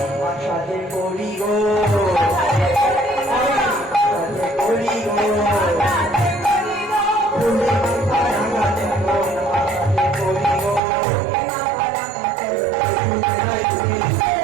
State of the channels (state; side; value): drops out; left; at 10.8 s